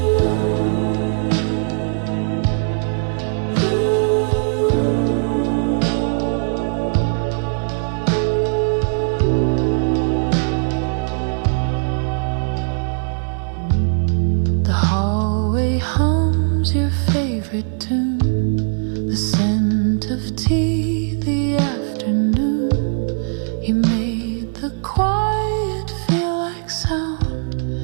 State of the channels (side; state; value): left; silent; digital silence